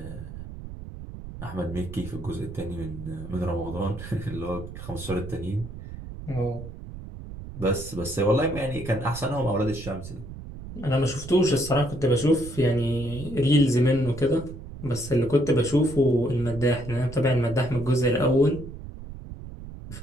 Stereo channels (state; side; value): noise; right; rumble, 12 dB below the sound